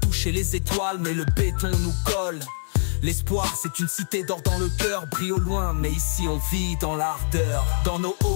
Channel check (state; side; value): silent; right; digital silence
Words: les étoiles mais le béton nous colle. L'espoir c'est une cité d'or dans le cœur, brille au loin mais ici on vit dans l'ardeur. Dans nos